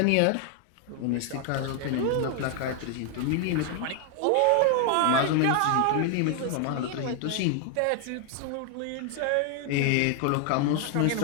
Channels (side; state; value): both; different; correlation 0.00